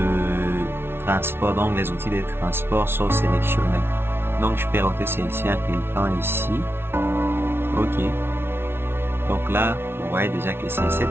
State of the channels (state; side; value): late; left; 0.12 ms